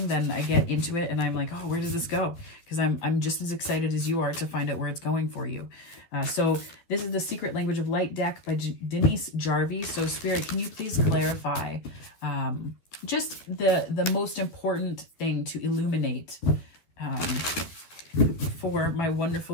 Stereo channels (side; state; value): right; late; 12 ms